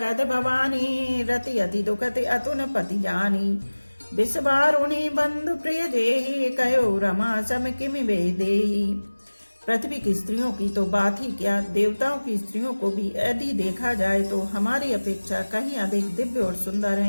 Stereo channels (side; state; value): both; inverted; correlation -1.00